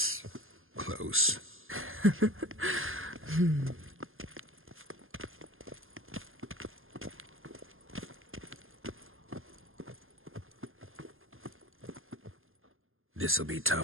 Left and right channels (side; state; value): left; late; 0.60 ms